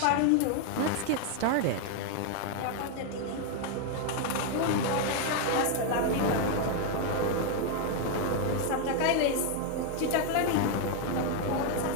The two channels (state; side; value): different; both; correlation 0.01